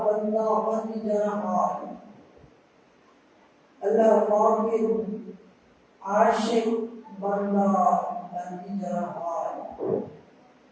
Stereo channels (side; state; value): both; identical; correlation 1.00